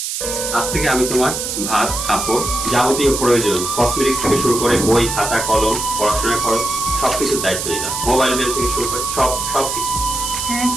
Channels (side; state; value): right; noise; hiss, 4 dB below the sound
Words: আজ থেকে আমি তোমার ভাত, কাপড়, যাবতীয় প্রয়োজন কসমেটিক্স থেকে শুরু করে বই, খাতা, কলম, পড়াশোনার খরচ সবকিছুর দায়িত্ব নিলাম। মোবাইল বিল থেকে শুরু করে সবকিছু। হ্যাঁ,